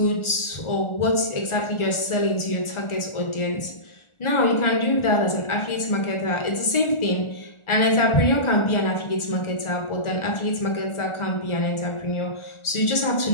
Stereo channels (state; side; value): late; right; 1.4 ms